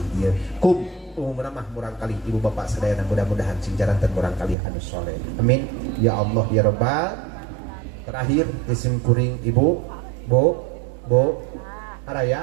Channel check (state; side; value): drops out; left; at 4.5 s